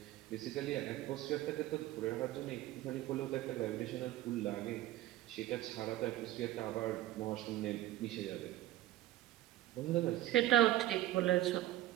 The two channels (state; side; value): quieter; left; 14.7 dB